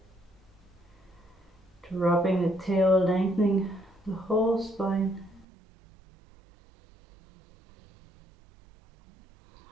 dropping the tail, lengthening the whole spine.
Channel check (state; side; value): drops out; left; at 5.5 s